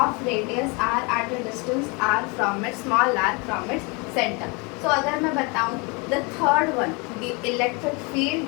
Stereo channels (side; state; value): right; quieter; 29.8 dB